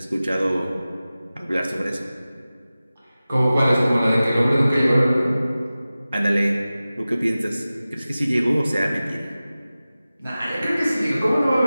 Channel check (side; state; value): both; inverted; correlation -0.96